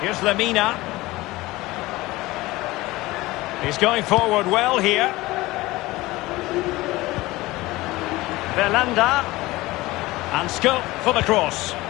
Here's Lemina. He's going forward well here. Belhanda. And scope for the cross.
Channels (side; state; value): right; quieter; 19.5 dB